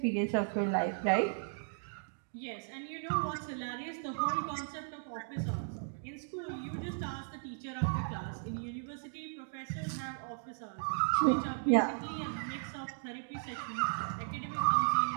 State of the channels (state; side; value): silent; left; digital silence